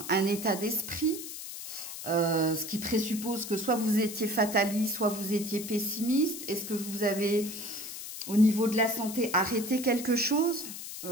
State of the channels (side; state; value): left; noise; hiss, 9 dB below the sound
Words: état d'esprit, ce qui présuppose que soit vous étiez fataliste, soit vous étiez pessimiste. Est-ce que vous avez, au niveau de la santé, arrêté quelque chose?